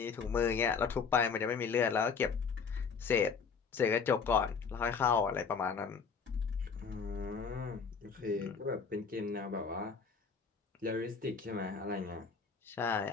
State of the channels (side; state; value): right; quieter; 5.7 dB